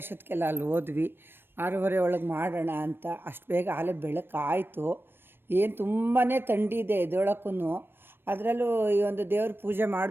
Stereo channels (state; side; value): late; left; 0.10 ms